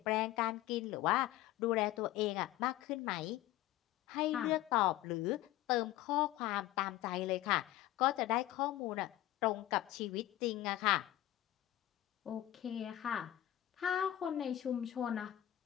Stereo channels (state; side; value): quieter; right; 14.5 dB